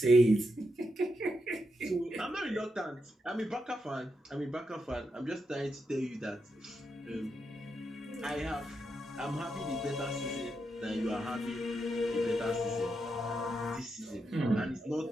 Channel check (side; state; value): both; normal; correlation 0.84